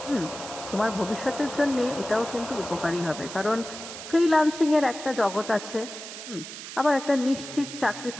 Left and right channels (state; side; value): noise; right; hiss, 11 dB below the sound